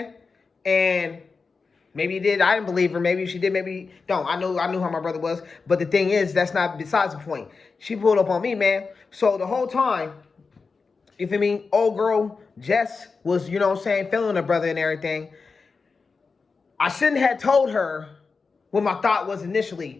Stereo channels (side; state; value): right; quieter; 4.6 dB